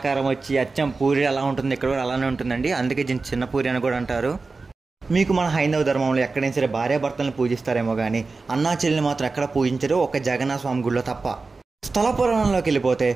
వచ్చి అచ్చం పూరి ఎలా ఉంటుంది, ఇక్కడ కూడా అలానే ఉంటుందండి. అందుకే చిన్న పూరి అని కూడా అంటారు. మీకు మన హైందవ ధర్మంలో ఎక్కడైనా సరే భార్యాభర్తలను పూజిస్తారేమో కానీ అన్నా చెల్లిని మాత్రం ఎక్కడ పూజించరు, ఒక జగన్నాథ స్వామి గుడిలో తప్ప. స్థల పురాణంలోకి వెళ్ళిపోతే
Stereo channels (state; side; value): quieter; left; 4.0 dB